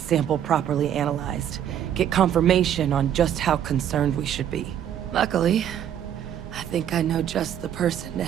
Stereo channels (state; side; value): quieter; left; 10.0 dB